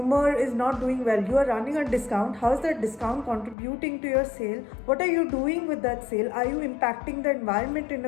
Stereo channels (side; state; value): right; drops out; at 3.6 s